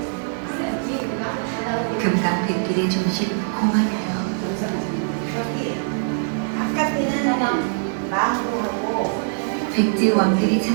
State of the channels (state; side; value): silent; left; digital silence